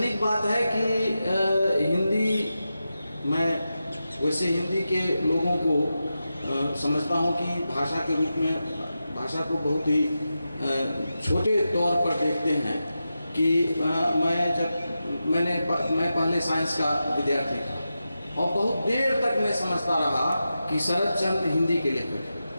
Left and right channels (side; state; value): both; inverted; correlation -0.91